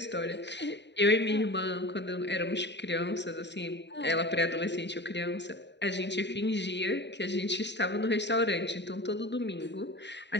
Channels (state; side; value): late; right; 0.51 ms